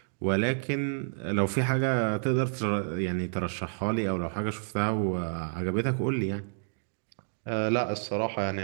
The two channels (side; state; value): left; silent; digital silence